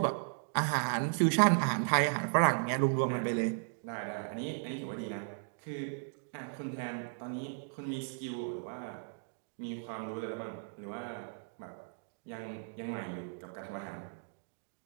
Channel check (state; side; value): silent; left; digital silence